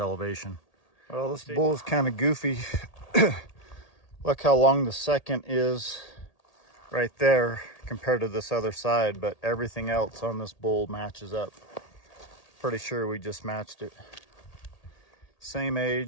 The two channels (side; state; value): right; late; 1.8 ms